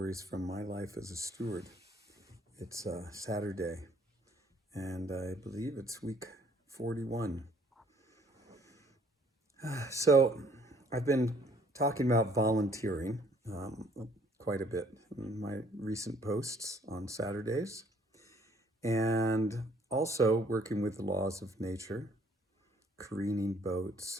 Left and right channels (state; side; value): normal; both; correlation 0.62